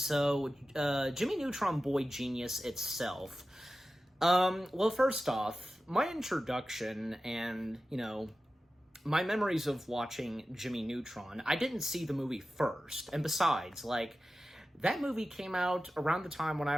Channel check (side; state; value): both; normal; correlation 0.94